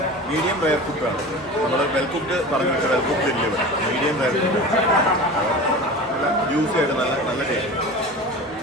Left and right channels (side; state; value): both; normal; correlation 0.34